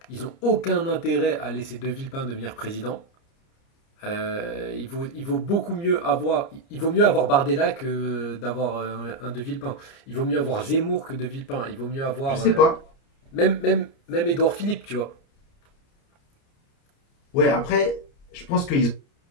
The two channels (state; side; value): late; right; 30 ms